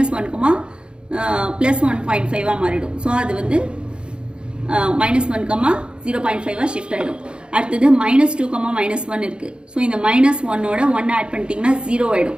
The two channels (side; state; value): left; late; 0.053 ms